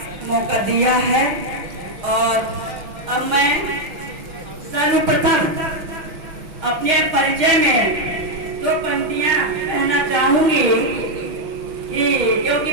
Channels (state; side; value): late; left; 6.3 ms